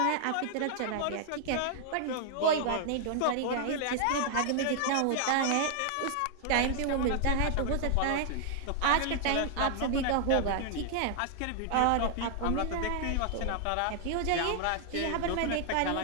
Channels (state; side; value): different; both; correlation 0.00